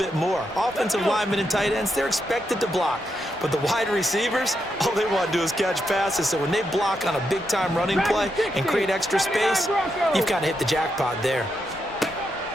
more. Offensive linemen and tight ends, they're expected to block. But the wide receivers, all they want to do is catch passes. So when they block on a big-time running play and create extra space, you've got to hit the jackpot there.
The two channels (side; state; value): both; normal; correlation 0.83